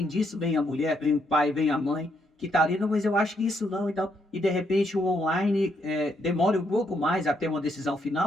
disso, vem a mulher, vem o pai, vem a mãe, que tá ali, não, mas eu acho que isso não, então. E de repente o online demora um pouco mais até uma decisão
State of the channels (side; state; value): both; normal; correlation 0.76